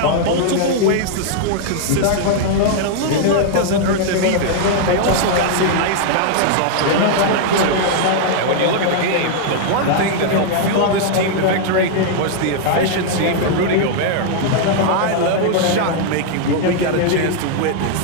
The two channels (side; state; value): both; different; correlation 0.00